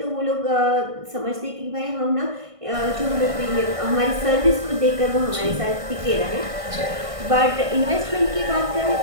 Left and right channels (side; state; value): left; late; 1.5 ms